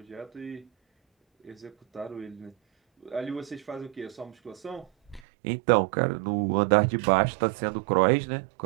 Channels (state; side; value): drops out; left; at 5.2 s